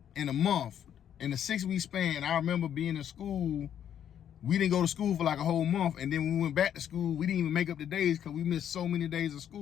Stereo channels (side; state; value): right; quieter; 9.6 dB